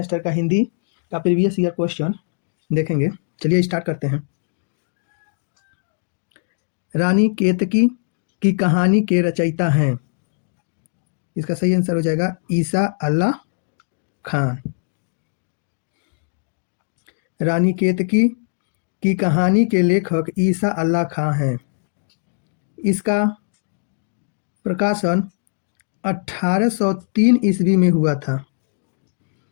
का हिंदी का प्रीवियस ईयर क्वेश्चन देखेंगे। चलिए स्टार्ट करते हैं। रानी केतकी की कहानी के रचयिता हैं। इसका सही आंसर हो जाएगा ईसा अल्लाह खान। रानी केतकी की कहानी के लेखक ईसा अल्लाह खान हैं। इसका प्रकाशन 1803 ईस्वी में हुआ था।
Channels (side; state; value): right; silent; digital silence